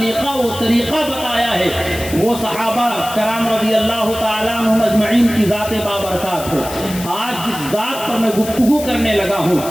و طریقہ بتایا ہے، وہ صحابہ کرام رضی اللہ تعالیٰ عنہم اجمعین کی ذات بابرکات ہے۔ آج جس ذات پر میں گفتگو کرنے لگا ہوں،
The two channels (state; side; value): noise; left; hiss, 11 dB below the sound